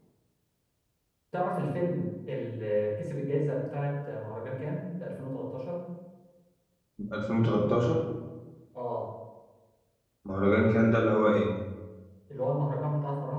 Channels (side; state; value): both; identical; correlation 1.00